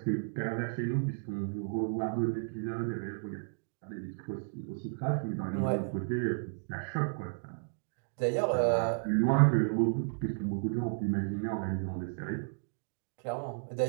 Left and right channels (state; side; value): silent; left; digital silence